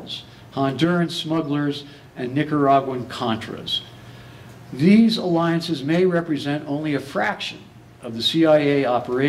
Honduran smugglers, and Nicaraguan Contras. These alliances may represent only a fraction of the CIA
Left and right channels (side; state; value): both; identical; correlation 1.00